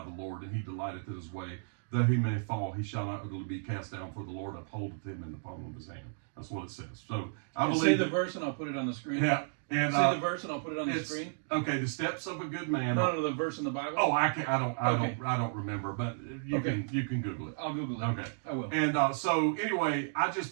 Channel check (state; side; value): silent; left; digital silence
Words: the Lord, and he delighteth in his way. Though he may fall, he shall not utterly be cast down, for the Lord upholdeth him in the palm of his hand. That's what it says. So I believe. Say the verse, and I'll put it on the screen. Yeah. And say the verse, and I'll put it on the screen. Okay, the steps of a good man. No, the verse in the Bible. Oh, I don't remember, but you can Google it. I'll Google it. Okay, I will. And so anyway, I just